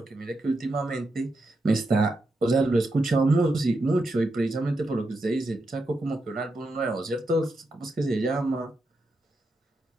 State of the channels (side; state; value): both; normal; correlation 0.86